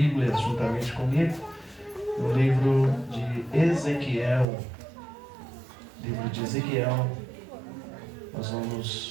juntamente comigo no livro de Ezequiel. Nós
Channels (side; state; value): left; drops out; at 4.5 s